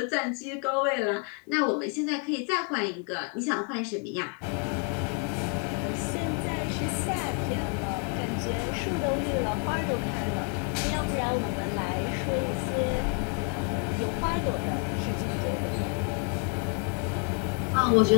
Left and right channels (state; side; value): quieter; right; 37.3 dB